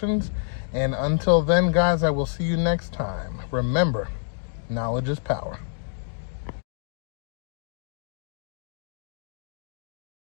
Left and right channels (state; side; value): silent; right; digital silence